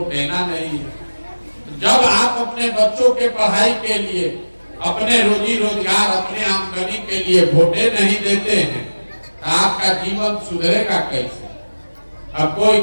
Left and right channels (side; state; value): both; inverted; correlation -1.00